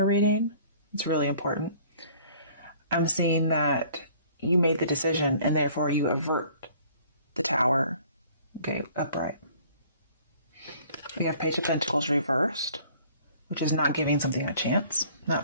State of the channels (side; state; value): both; inverted; correlation -0.54